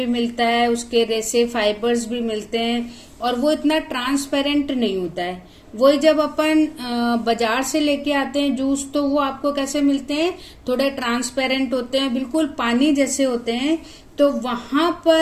मिलता है, उसके रेसे फाइबर्स भी मिलते हैं और वो इतना ट्रांसपेरेंट नहीं होता है। वही जब अपन बाजार से लेके आते हैं जूस तो वो आपको कैसे मिलते हैं, थोड़े ट्रांसपेरेंट होते हैं, बिल्कुल पानी जैसे होते हैं। तो वहां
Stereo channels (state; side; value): identical; both; correlation 1.00